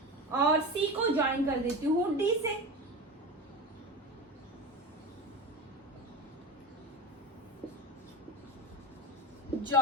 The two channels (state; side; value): normal; both; correlation 0.26